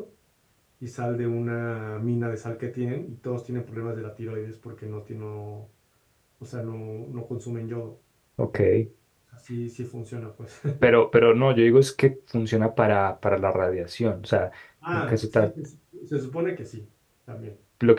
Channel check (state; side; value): identical; both; correlation 1.00